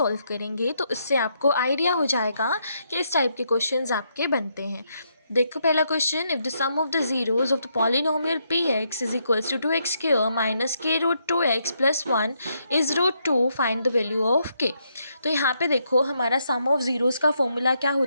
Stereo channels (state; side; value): inverted; both; correlation -0.77